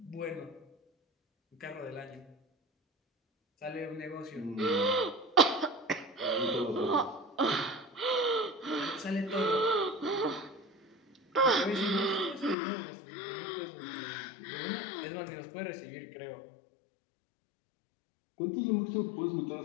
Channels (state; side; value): drops out; right; at 12.6 s